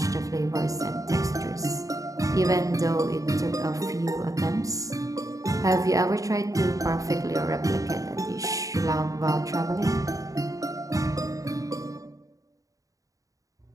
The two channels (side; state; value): left; late; 0.16 ms